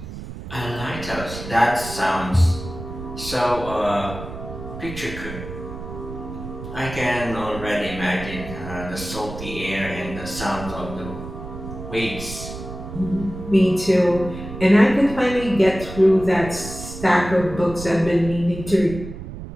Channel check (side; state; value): right; noise; rumble, 10 dB below the sound